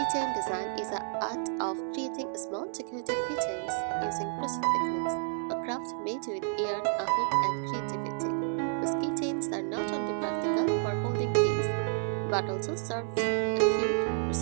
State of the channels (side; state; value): left; silent; digital silence